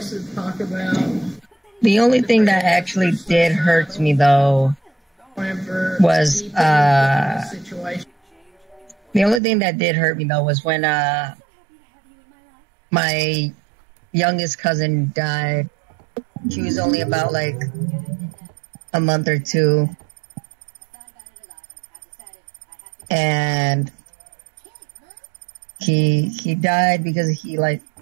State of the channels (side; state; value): left; drops out; at 9.4 s